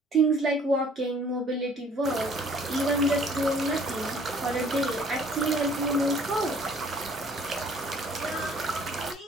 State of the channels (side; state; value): both; normal; correlation 0.56